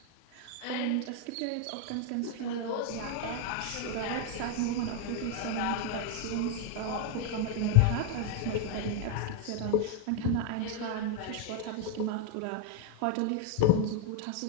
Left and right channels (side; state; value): both; different; correlation 0.00